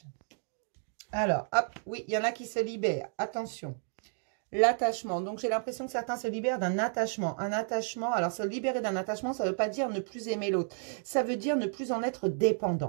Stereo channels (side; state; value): left; silent; 57 dB below the other